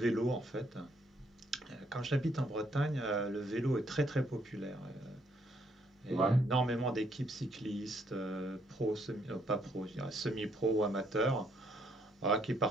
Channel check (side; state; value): both; normal; correlation 0.71